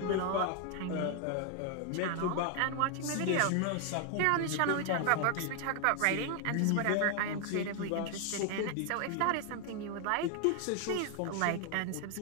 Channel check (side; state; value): both; different; correlation 0.00